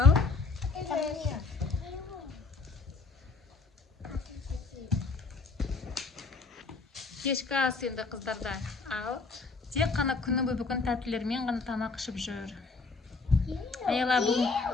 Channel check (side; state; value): right; quieter; 4.1 dB